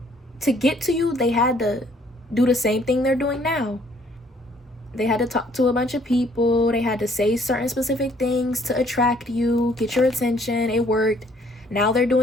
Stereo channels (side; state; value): both; normal; correlation 0.62